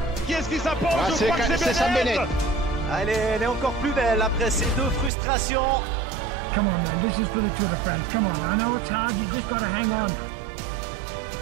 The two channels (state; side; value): drops out; left; at 5.1 s